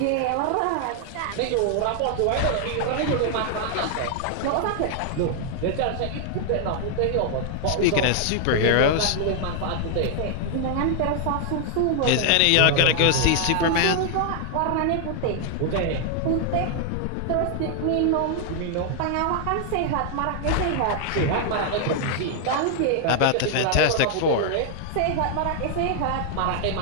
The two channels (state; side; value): different; both; correlation 0.00